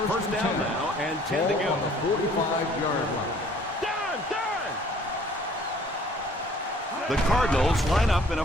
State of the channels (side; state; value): both; normal; correlation 0.56